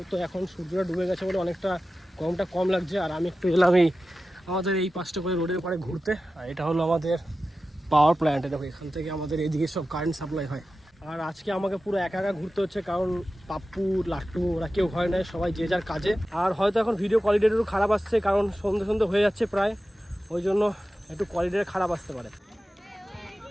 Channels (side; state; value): both; normal; correlation 0.94